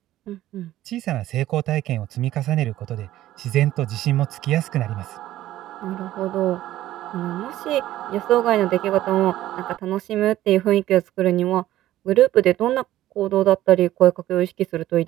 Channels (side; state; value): left; quieter; 14.2 dB